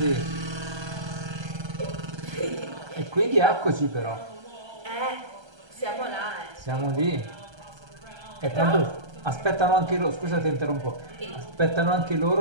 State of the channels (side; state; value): left; late; 1.3 ms